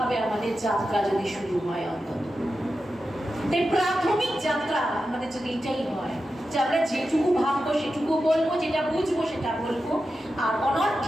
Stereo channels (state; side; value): normal; both; correlation 0.90